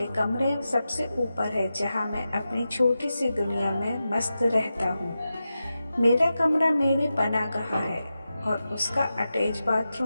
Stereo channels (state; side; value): inverted; both; correlation -0.92